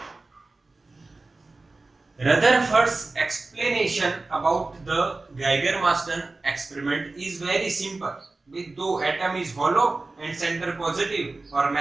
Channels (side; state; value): left; quieter; 3.4 dB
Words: Rutherford's explanation about the Geiger-Masten experiment is very simple. With दो atom is hollow and center positive और